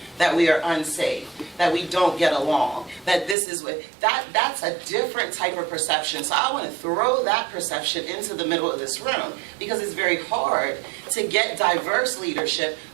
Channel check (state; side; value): drops out; left; at 3.4 s